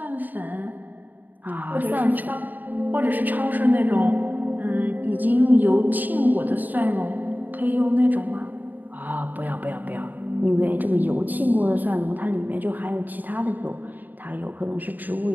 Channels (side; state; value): left; late; 0.086 ms